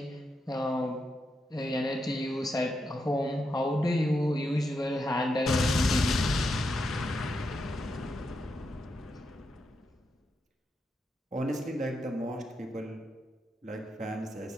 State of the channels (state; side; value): normal; both; correlation 0.84